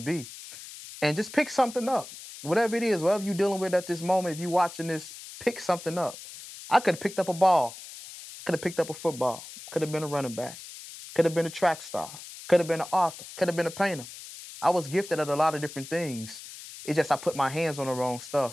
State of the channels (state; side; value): noise; left; hiss, 14 dB below the sound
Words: be. And just pick something up. Whatever it is, whatever you're dealing with at this moment, if you're watching this, pick something up. I could have picked up a ball. I could have picked up a football. Could have been a running back. Could have been a track star. Could have been an author. Could have been a painter. I was gifted at a lot of different things. It's just I put my hands on the wrong